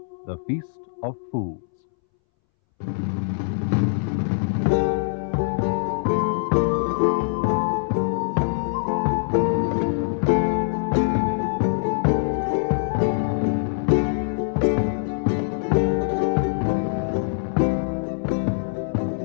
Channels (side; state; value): right; silent; 63 dB below the other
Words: The Feast of Fools.